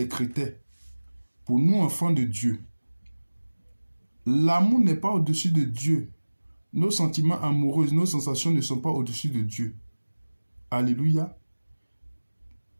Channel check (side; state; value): both; inverted; correlation -1.00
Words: critères pour nous, enfants de Dieu. L'amour n'est pas au-dessus de Dieu. Nos sentiments amoureux, nos sensations ne sont pas au-dessus de Dieu. Alléluia.